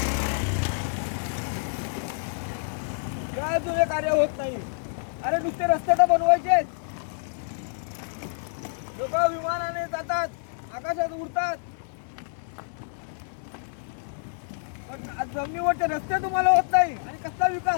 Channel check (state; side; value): silent; right; digital silence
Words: काय तुझे कार्य होत नाही. अरे नुसते रस्ते तर बनवायचे. लोक विमानाने जातात, आकाशात उडतात, पण जमिनीवरचे रस्ते तुम्हाला होत नाही. आणि कसला